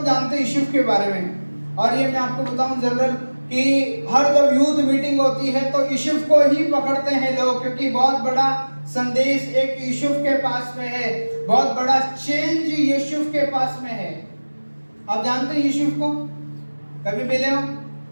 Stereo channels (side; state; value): both; inverted; correlation -1.00